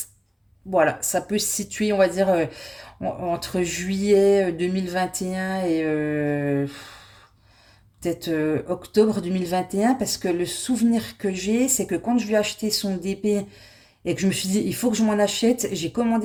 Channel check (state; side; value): identical; both; correlation 1.00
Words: voilà, ça peut se situer, on va dire, entre juillet 2021 et peut-être octobre 2021, parce que le souvenir que j'ai, c'est que quand je lui ai acheté son DP et que je me suis dit, il faut que je m'en achète, j'ai